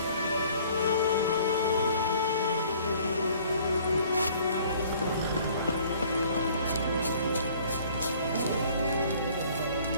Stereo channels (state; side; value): inverted; both; correlation -0.55